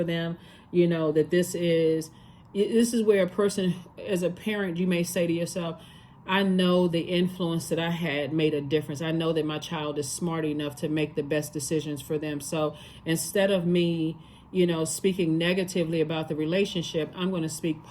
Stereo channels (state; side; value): identical; both; correlation 1.00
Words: them. That this is where a person, as a parent, you may say to yourself, I know the influence that I had made a difference. I know that my child is smart enough to make the best decisions for them. So instead of me, speaking negatively about the relationship, I'm going to speak